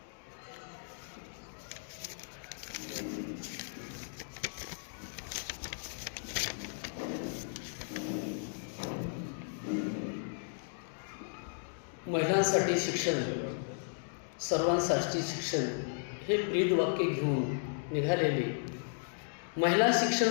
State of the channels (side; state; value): right; silent; digital silence